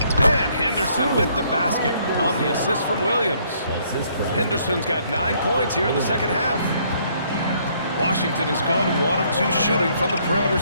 And Henderson with the basket on the assist from Williams. Henderson's got 9 points here in the second half. Washington has gone 1 of 2 shooting from the perimeter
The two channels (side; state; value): both; inverted; correlation -0.66